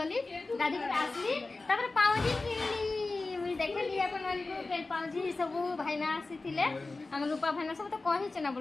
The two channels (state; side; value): quieter; right; 3.4 dB